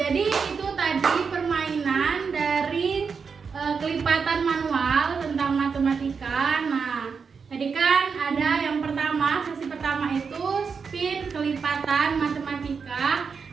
itu tadi permainan dari kelipatan manual tentang matematika. Nah, tadi kan ada yang pertama, sesi pertama itu spin kelipatan matematika.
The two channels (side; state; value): left; quieter; 5.7 dB